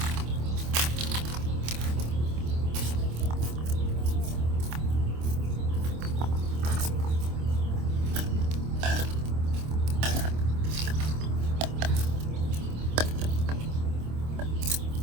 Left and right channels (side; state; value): left; late; 26 ms